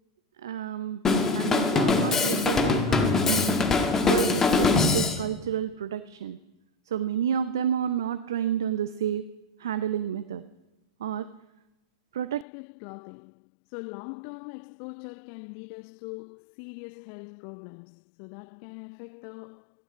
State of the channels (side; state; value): right; drops out; at 12.5 s